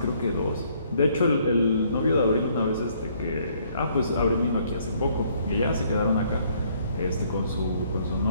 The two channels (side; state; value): both; inverted; correlation -0.66